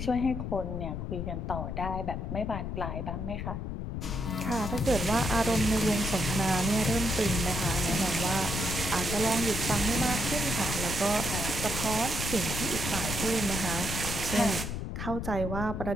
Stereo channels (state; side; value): noise; left; rumble, 4 dB below the sound